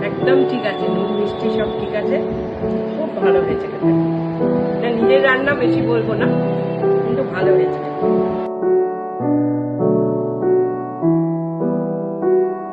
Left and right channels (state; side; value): identical; both; correlation 1.00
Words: একদম ঠিক আছে, নুন মিষ্টি সব ঠিক আছে, খুব ভালো হয়েছে খেতে। নিজের রান্না বেশি বলবো না, কিন্তু ভালো হয়েছে।